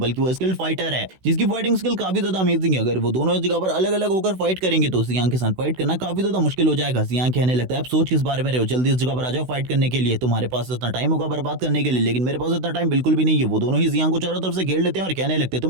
वो स्किल्ड फाइटर है, जिसकी फाइटिंग स्किल काफी ज्यादा अमेजिंग है। अगर वो दोनों इस जगह पर अलग अलग होकर फाइट करेंगे तो जियांग के साथ फाइट करना काफी ज्यादा मुश्किल हो जाएगा। जियांग कहने लगता है अब सोच किस बारे में रहे हो, जल्दी इस जगह पर आ जाओ फाइट करने के लिए, तुम्हारे पास इतना टाइम होगा बर्बाद करने के लिए, लेकिन मेरे पास इतना टाइम बिल्कुल भी नहीं है। वो दोनों ही जियांग को चारों तरफ से घेर लेते हैं और कहने लगते हैं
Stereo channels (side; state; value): left; late; 16 ms